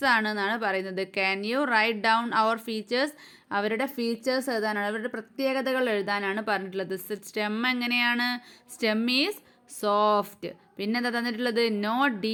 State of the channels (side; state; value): both; identical; correlation 1.00